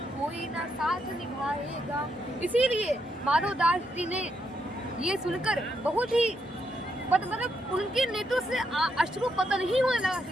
कोई ना साथ निभाएगा। इसीलिए माधव दास जी ने ये सुनकर बहुत ही मतलब उनके नेत्रों से अश्रु पतन ही होने लगा कि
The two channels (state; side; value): normal; both; correlation 0.79